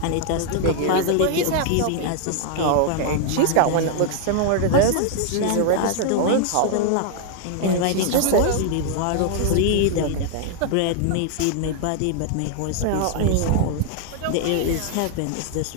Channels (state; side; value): different; both; correlation 0.00